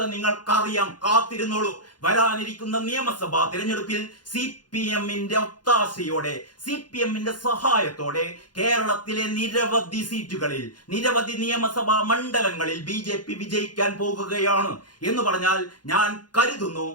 നിങ്ങൾക്കറിയാം, കാത്തിരുന്നോളൂ. വരാനിരിക്കുന്ന നിയമസഭാ തിരഞ്ഞെടുപ്പിൽ CPM-ന്റെ ഒത്താശയോടെ, CPM-ന്റെ സഹായത്തോടെ കേരളത്തിലെ നിരവധി സീറ്റുകളിൽ, നിരവധി നിയമസഭാ മണ്ഡലങ്ങളിൽ BJP വിജയിക്കാൻ പോകുകയാണ് എന്ന് പറഞ്ഞാൽ ഞാൻ കരുതുന്നു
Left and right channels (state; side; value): late; right; 0.70 ms